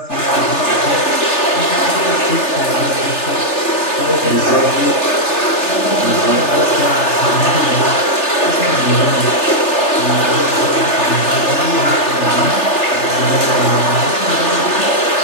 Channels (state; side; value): late; right; 3.4 ms